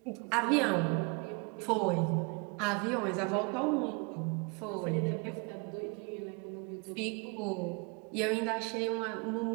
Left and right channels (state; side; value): quieter; left; 32.2 dB